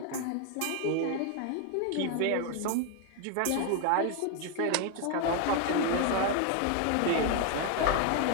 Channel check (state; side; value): different; both; correlation 0.01